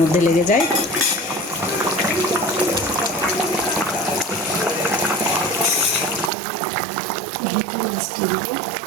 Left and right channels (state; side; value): drops out; left; at 6.3 s